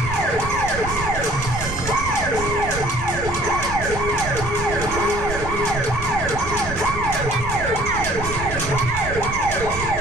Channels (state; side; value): noise; right; rumble, 8 dB below the sound